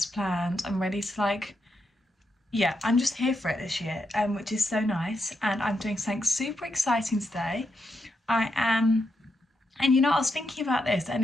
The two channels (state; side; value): normal; both; correlation 0.83